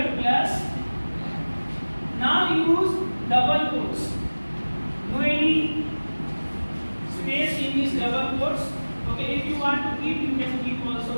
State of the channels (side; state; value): both; inverted; correlation -1.00